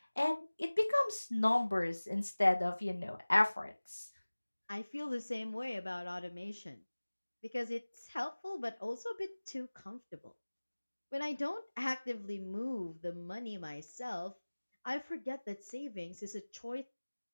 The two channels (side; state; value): both; inverted; correlation -1.00